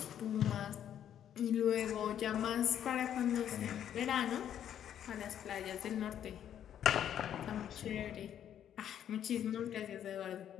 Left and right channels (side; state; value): right; quieter; 10.0 dB